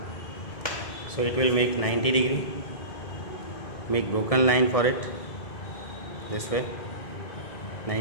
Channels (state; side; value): late; right; 1.7 ms